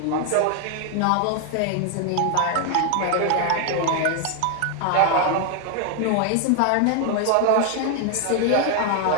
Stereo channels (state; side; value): different; both; correlation 0.01